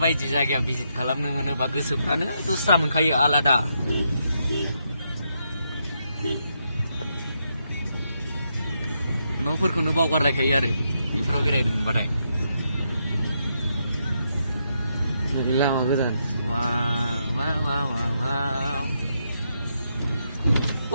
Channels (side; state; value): both; inverted; correlation -0.80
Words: जायगायाव भिजिट खालामनो मोनोबा गोसोफ्रानो दस्रा मोनखायो आलादा न'फोरखौनो बावगारलायखायो आरो बेफोराव बेरायनो मोनबाथाय लामा गोदान